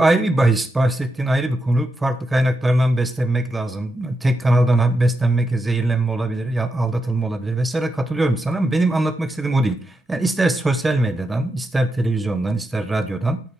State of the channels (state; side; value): normal; both; correlation 0.85